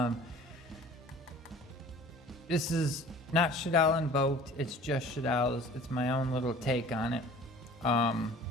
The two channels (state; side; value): normal; both; correlation 0.47